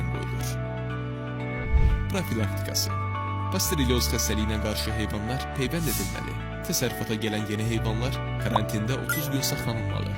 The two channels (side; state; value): both; identical; correlation 1.00